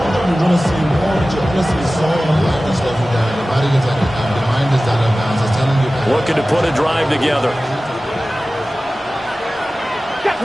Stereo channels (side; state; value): both; normal; correlation 0.96